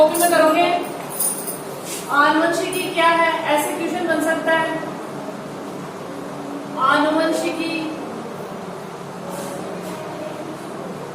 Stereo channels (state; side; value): identical; both; correlation 1.00